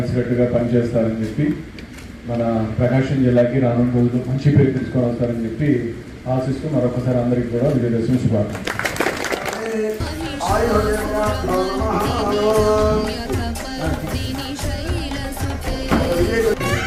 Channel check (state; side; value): identical; both; correlation 1.00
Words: పనిచేస్తారని చెప్పి మన ప్రకాశం జిల్లాకి రానున్న రోజుల్లో మంచి పేరు తీసుకొని వస్తారని చెప్పి ఆశిస్తూ మరొకసారి అందరికీ కూడా విజయదశమి శుభాకాంక్షలు. आयुर्वेद